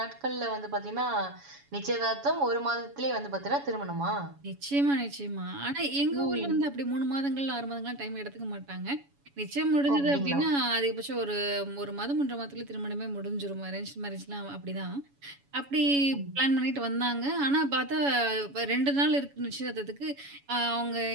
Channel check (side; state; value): left; late; 7.1 ms